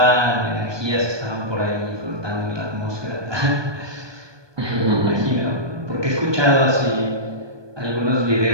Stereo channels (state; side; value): late; left; 1.2 ms